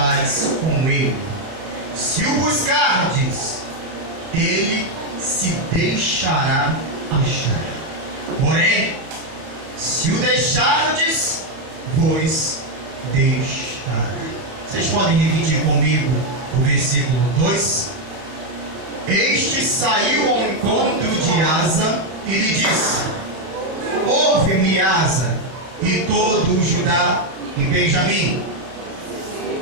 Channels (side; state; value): left; late; 30 ms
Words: com ele. Se o buscardes, ele se deixará achar. Porém, se o deixardes, vos deixará. Vocês podem repetir comigo o versículo 2? Este saiu ao encontro de Asa e lhe disse: ouve-me, Asa, e todo o Judá e Benjamim.